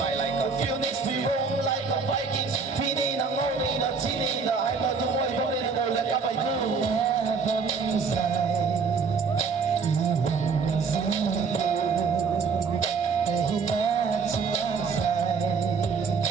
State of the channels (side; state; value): left; quieter; 5.1 dB